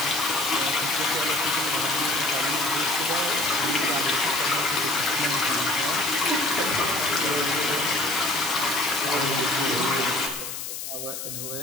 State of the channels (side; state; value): left; noise; hiss, 7 dB below the sound